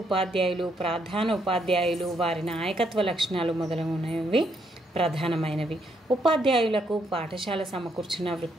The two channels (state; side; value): normal; both; correlation 0.74